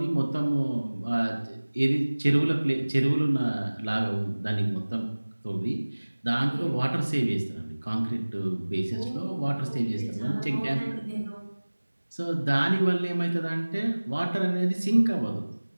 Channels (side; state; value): both; inverted; correlation -1.00